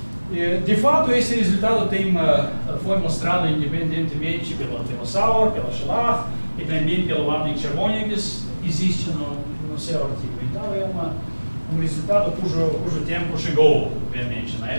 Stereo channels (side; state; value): both; inverted; correlation -1.00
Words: De fato, esse resultado foi mostrado independentemente pela Sauer, pela Schlag e também pelo Wapnick-Chervonegas, existe no seu artigo. Então, é um resultado cujo tempo chegou, obviamente, na